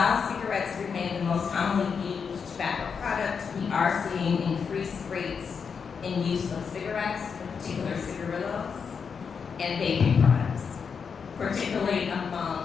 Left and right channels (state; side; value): quieter; right; 6.1 dB